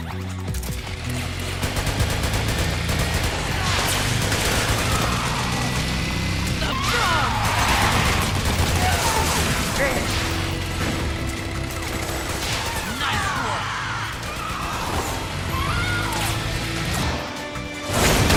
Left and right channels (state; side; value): identical; both; correlation 1.00